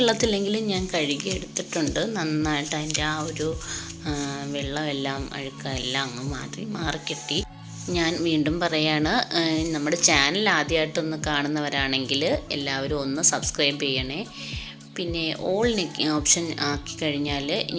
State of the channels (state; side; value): identical; both; correlation 1.00